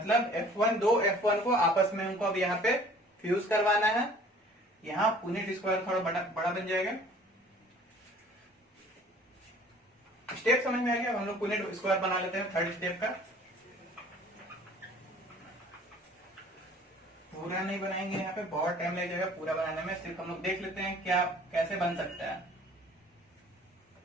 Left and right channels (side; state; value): both; normal; correlation 0.51